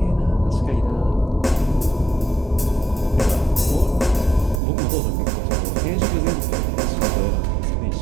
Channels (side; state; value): left; drops out; at 4.6 s